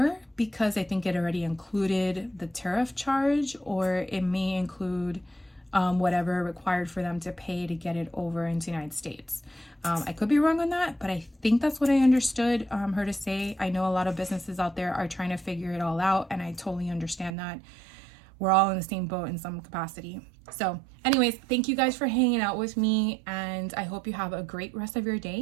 because I think it already included the tariff charge, or it may include whatever required for them to pay to get it over into the United States. I could be wrong on that, but I think that's what I understood her to say. I know a lot of businesses out there are trying to figure it all out, and I totally understand that. We're all in the same boat in some capacity. So anyways, thank you guys for hanging out with me, and I hope you have a great rest of your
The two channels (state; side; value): drops out; left; at 17.3 s